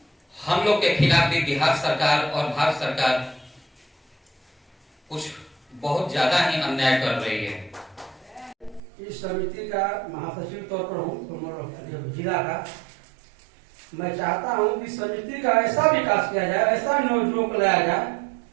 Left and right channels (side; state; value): left; drops out; at 8.8 s